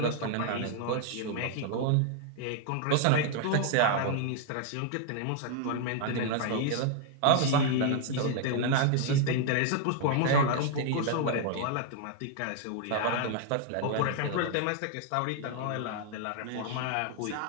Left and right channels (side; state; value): both; different; correlation 0.00